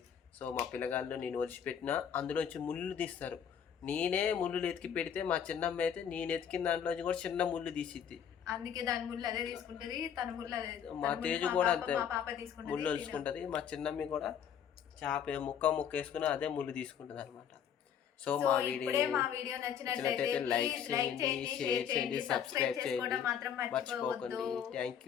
సో మా పిల్లగాళ్ళు నేను వదిలిపెట్టినా అందులోంచి ముళ్ళు తీస్తారు. నేనే ముళ్ళు ఎతికి పెడితే మా చిన్నమ్మ అయితే నేను ఎతికిన దాంట్లోంచి కూడా చిన్న ముళ్ళు తీసిద్ది. అందుకే దాని ముళ్ళు అదే తీసుకుంటది, తన ముళ్ళు అదే. మా తేజు కూడా అంతే తీసుకుంటది, ముళ్ళు వలుచుకుంటది. మా చిన్నమ్మి కూడా చేప ముక్క వేసుకుని అదే ముళ్ళు తీసుకుంటది అనమాట. సో మా వీడియో నచ్చినట్లయితే లైక్ చేయండి, షేర్ చేయండి, సబ్స్క్రైబ్ చేసుకోవడం మాత్రం మర్చిపోవద్దు. థ్యాంక్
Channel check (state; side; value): quieter; right; 8.4 dB